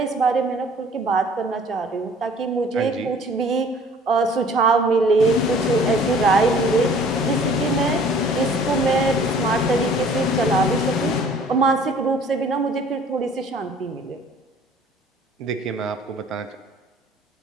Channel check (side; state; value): both; normal; correlation 0.52